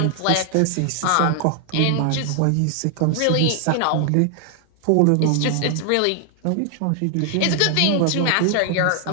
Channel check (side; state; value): both; different; correlation 0.00